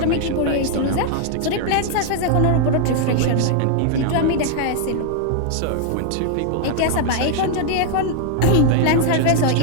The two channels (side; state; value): both; different; correlation 0.00